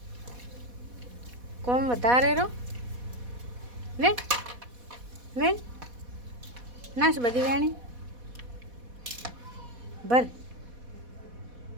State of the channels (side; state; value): left; late; 4.1 ms